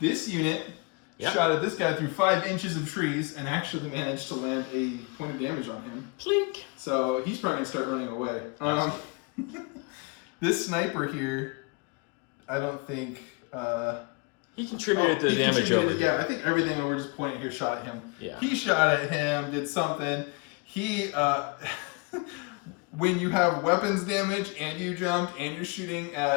unit shot at this guy through 5 inches of trees and actually managed to land a point of damage on him. Plink. So he's probably going to start running away. This sniper here, I don't think... he contributed to the damage over here. Yeah, I think everything that we're just pointing here shot at him. Yeah. He shot at him, did something. He... when you have weapons damage and you jumped and you're shooting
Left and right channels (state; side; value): quieter; right; 29.9 dB